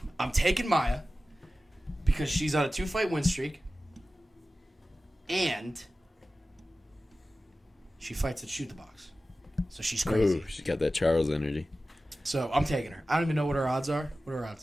I'm taking Maya because she's on a 2-fight win streak, and she fights at shoot the box, so she's crazy. Ooh, she's got that Charles energy. So I'm taking her. I don't even know what her odds are. What are her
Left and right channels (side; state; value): both; normal; correlation 0.95